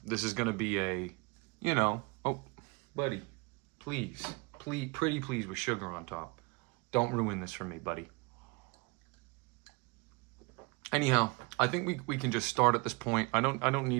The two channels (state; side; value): quieter; left; 28.3 dB